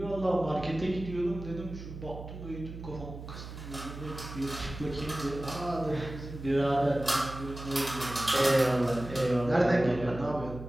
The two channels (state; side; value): noise; right; hum, 11 dB below the sound